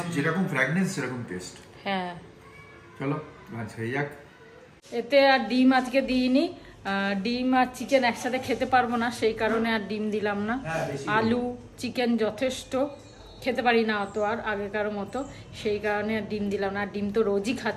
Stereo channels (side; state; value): both; identical; correlation 1.00